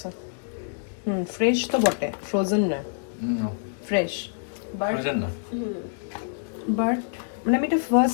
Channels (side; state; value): right; silent; digital silence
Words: ফ্রেশ তো বটে, ফ্রোজেন না, ফ্রেশ। বাট মানে আমি এটা